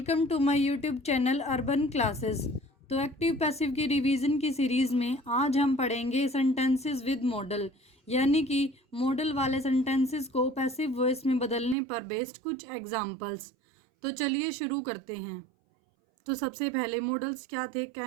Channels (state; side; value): drops out; left; at 11.8 s